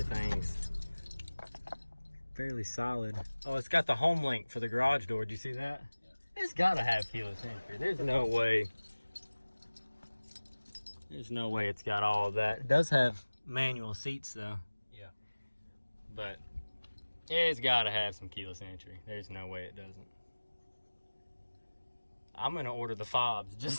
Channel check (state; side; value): inverted; both; correlation -1.00